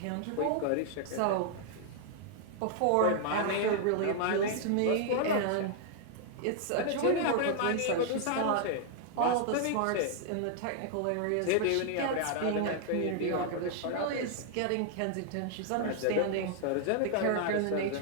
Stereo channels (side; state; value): both; different; correlation 0.00